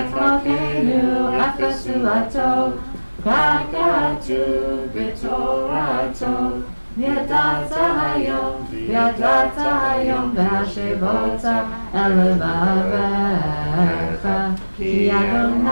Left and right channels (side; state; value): both; inverted; correlation -1.00